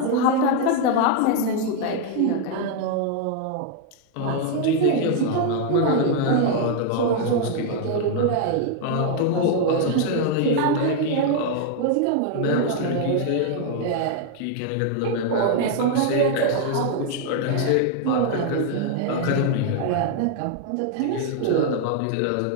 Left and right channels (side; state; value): both; different; correlation 0.00